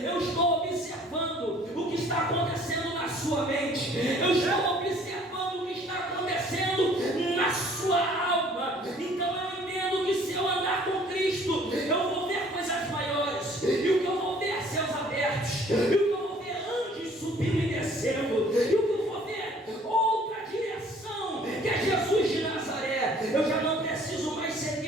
estou observando o que está acontecendo na sua mente. Eu estou observando o que está acontecendo na sua alma. Então eu entendo que se eu andar com Cristo, eu vou ver coisas maiores. E o que eu vou ver é céus abertos. E o que eu vou ver é anjos subindo e descendo. E o que eu vou ver é outra direção, que é Jesus de Nazaré. Eu já não preciso mais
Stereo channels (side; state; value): both; normal; correlation 0.56